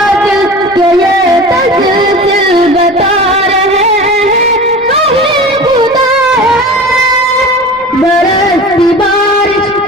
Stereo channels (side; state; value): right; noise; rumble, 26 dB below the sound